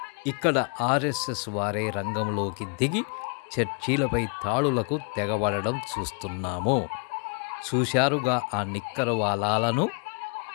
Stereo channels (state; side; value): quieter; right; 38.2 dB